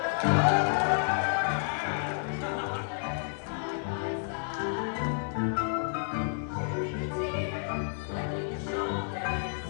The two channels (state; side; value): silent; right; digital silence